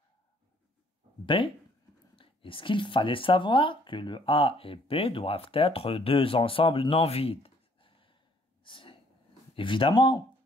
B. Et ce qu'il fallait savoir, que le A et B doivent être deux ensembles non vides. Évidemment,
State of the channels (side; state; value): both; normal; correlation 0.62